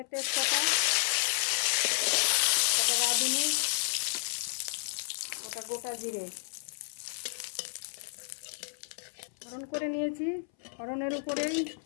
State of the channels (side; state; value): right; silent; 57 dB below the other